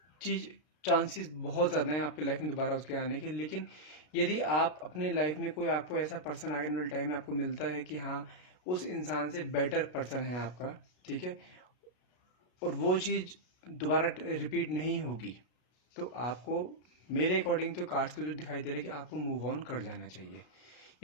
चीज़, चांसेस बहुत ज़्यादा हैं आपके लाइफ में दोबारा उसके आने के। लेकिन यदि आप अपने लाइफ में कोई आपको ऐसा पर्सन आगे वाले टाइम में आपको मिलता है कि हाँ उस इंसान से बेटर पर्सन है आपका, ठीक है, और वो चीज़ दोबारा रिपीट नहीं होगी, तो आपको, मेरे अकॉर्डिंग तो कार्ड्स पे तो दिखाई दे रहा है कि आपको मूव ऑन कर जाना चाहिए।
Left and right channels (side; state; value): right; late; 33 ms